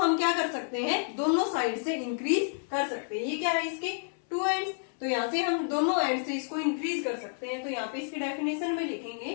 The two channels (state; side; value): silent; right; 58 dB below the other